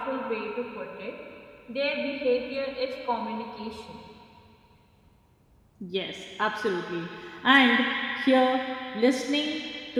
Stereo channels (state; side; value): identical; both; correlation 1.00